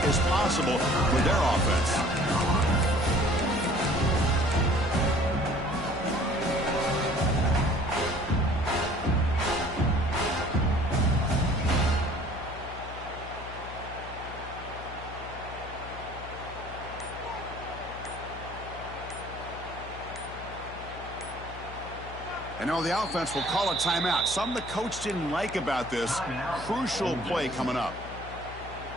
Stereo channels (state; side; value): noise; left; hum, 13 dB below the sound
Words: as possible with their offense. And now the offense will call a timeout. Something the coach didn't like about this. Crucial play coming up.